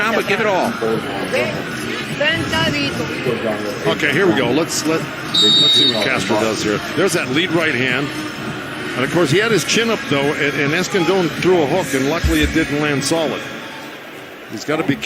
but give it all. Okay, here we go. Let's see what Castro does here. There's that lead right hand. And of course, he had his chin up though, and Escandón threw a hook, and luckily it didn't land solid. He's got to be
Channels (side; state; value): both; identical; correlation 1.00